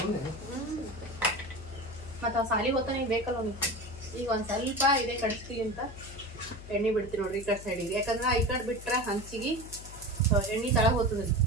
ಮತ್ತ ಸಾಲಿ ಹೊತ್ತ ನೀವು ಬೇಕಲ್ಲ ನೀವು. ಈಗ ಒಂದ್ ಸ್ವಲ್ಪ ಇದೇ ಕಡಿಸ್ತೀವಿ ಅಂತ ಎಣ್ಣೆ ಬಿಡ್ತೀವಿ ನೋಡ್ರಿ ಈ ಕಡೆ ಸೈಡಿಗೆ. ಯಾಕಂದ್ರೆ ಈ ಕಡೆ ಬಿಟ್ರೆ ಹಂಚಿಗೆ ಎಣ್ಣೆ ತಳಗ ಹೋಗ್ತದ್ರಿ.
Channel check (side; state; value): left; noise; hum, 14 dB below the sound